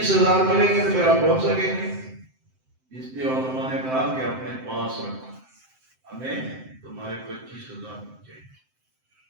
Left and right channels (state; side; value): late; left; 7.7 ms